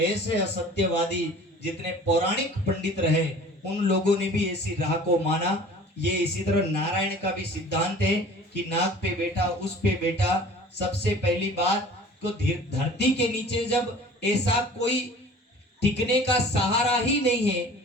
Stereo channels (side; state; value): both; normal; correlation 0.45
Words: असत्यवादी जितने पौराणिक पंडित रहे उन लोगों ने भी ऐसी राह को माना। ये इसी तरह नारायण का भी सिद्धांत है कि नाग पे बैठा उस पे बैठा। सबसे पहली बात तो धरती के नीचे जब ऐसा कोई टिकने का सहारा ही नहीं है